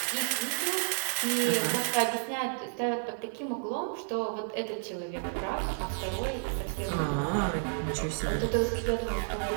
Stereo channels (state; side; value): silent; left; 57 dB below the other